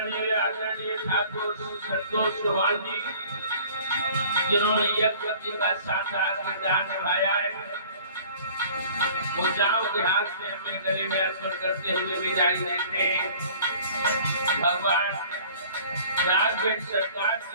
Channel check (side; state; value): both; inverted; correlation -0.49